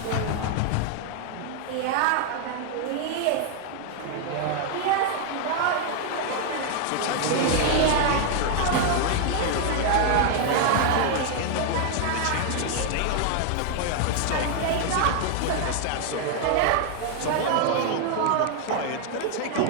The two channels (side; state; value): both; different; correlation 0.00